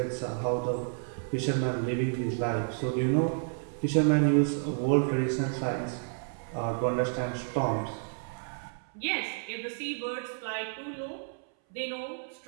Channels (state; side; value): silent; left; 57 dB below the other